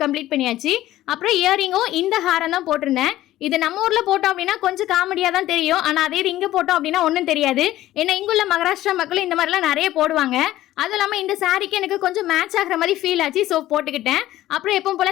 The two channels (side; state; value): right; quieter; 14.7 dB